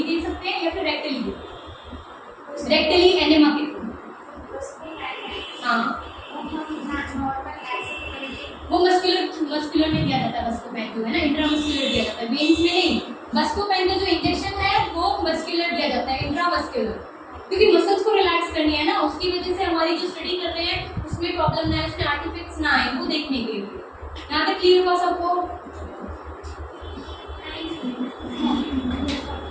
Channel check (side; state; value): both; identical; correlation 1.00